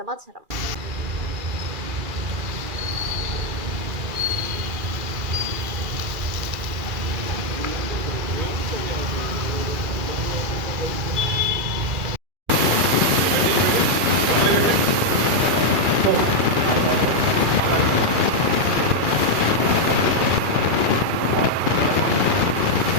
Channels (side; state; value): left; late; 2.4 ms